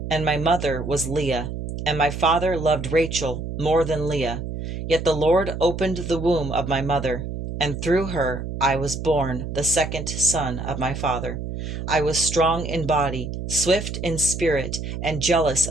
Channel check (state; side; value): noise; right; hum, 6 dB below the sound